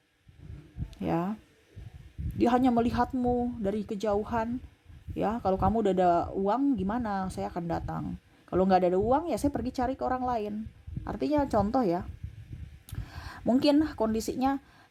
ya. Dia hanya melihatmu dari kejauhan, ya. Kalau kamu udah ada uang, gimana? Saya akan datang. Kalau nggak ada uang, ya saya pergi cari ke orang lain. Artinya contoh ya. Mungkin kondisinya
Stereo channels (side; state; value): both; identical; correlation 1.00